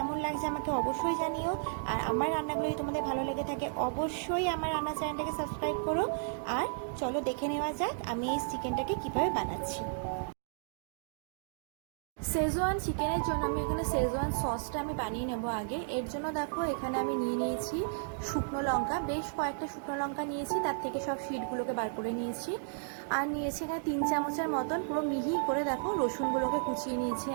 লাগছে আমাকে অবশ্যই জানিও। আর আমার রান্নাগুলো যদি তোমাদের ভালো লেগে থাকে অবশ্যই আমার রান্না চ্যানেলটাকে সাবস্ক্রাইব করো। আর চলো দেখে নেওয়া যাক আমি এই চিকেনটাকে কীভাবে বানাচ্ছি। শেজওয়ান চিকেনের জন্য আমি এখানে শেজওয়ান সসটা আমি বানিয়ে নেব আগে। এর জন্য দেখো এখানে আমি নিয়ে নিয়েছি শুকনো লঙ্কা, বেশ কয়েকটা শুকনো লঙ্কা নিয়েছি, তার থেকে সব শিটগুলোকে বার করে নিয়েছি। আর নিয়েছি এখানে 3 চামচের মতন পুরো মিহি করে দেখো রসুনগুলোকে কুচিয়ে নিয়েছি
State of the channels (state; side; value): silent; left; digital silence